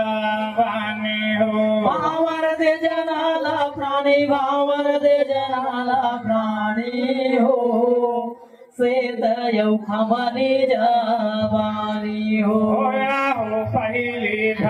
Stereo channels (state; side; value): identical; both; correlation 1.00